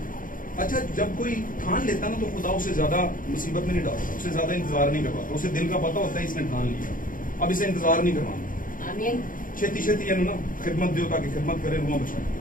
अच्छा, जब कोई ठान लेता ना तो खुदा उसे ज्यादा मुसीबत में नहीं डालता, उसे ज्यादा इंतजार नहीं करवाता, उसे दिल का पता होता है इसने ठान लिया, अब इसे इंतजार नहीं करवाना, छेती छेती ना खिदमत दो ताकि खिदमत करे, रुआ बचाए।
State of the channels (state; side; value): late; right; 0.40 ms